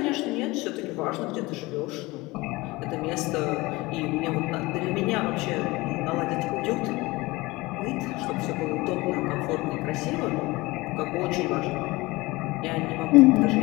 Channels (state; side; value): quieter; right; 21.8 dB